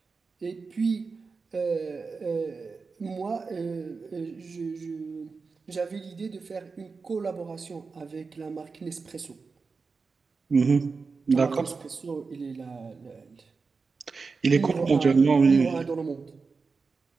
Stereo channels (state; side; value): quieter; left; 4.6 dB